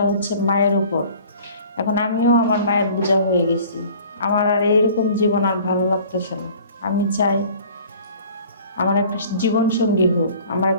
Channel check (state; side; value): inverted; both; correlation -0.49